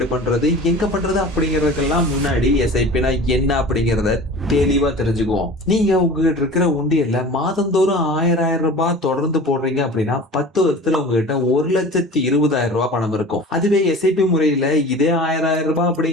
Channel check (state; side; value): normal; both; correlation 0.39